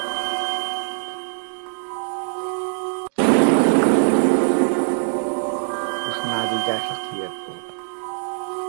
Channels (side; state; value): left; silent; digital silence